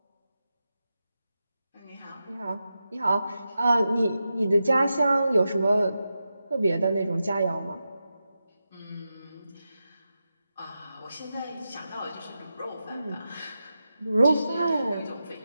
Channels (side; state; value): both; inverted; correlation -0.90